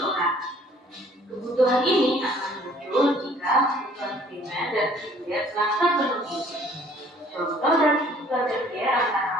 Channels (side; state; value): both; normal; correlation 0.57